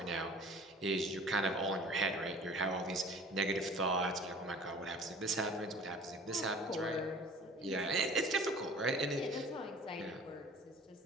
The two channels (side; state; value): both; normal; correlation 0.46